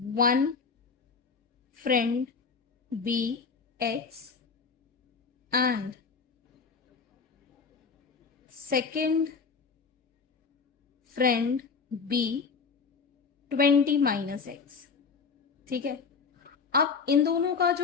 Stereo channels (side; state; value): right; quieter; 5.2 dB